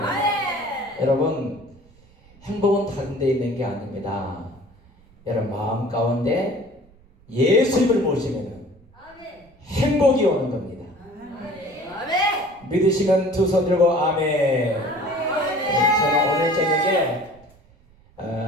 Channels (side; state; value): right; noise; rumble, 28 dB below the sound